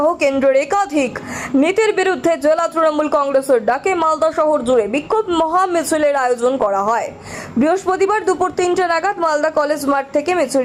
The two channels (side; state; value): both; identical; correlation 1.00